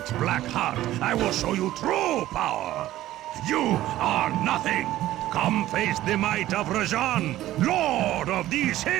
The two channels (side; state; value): left; quieter; 14.6 dB